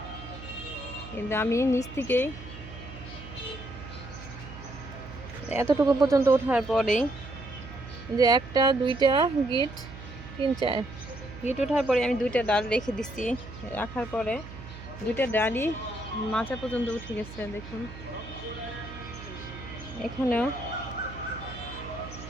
কিন্তু আমি নিচ থেকেই এতটুকু পর্যন্ত ওঠার পরেই যে 1টা 2টা গিট 3 4 গিট ওঠার পরে আমি 2টা ডাল রেখে দিচ্ছি। রাখার পরে 2টা ডালই মাচা পর্যন্ত উঠে গেছে। দেখুন এখানেও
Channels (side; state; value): right; noise; hum, 14 dB below the sound